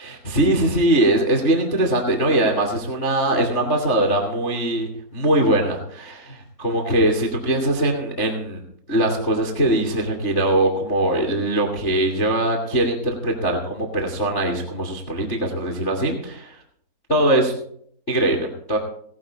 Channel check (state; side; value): late; right; 3.4 ms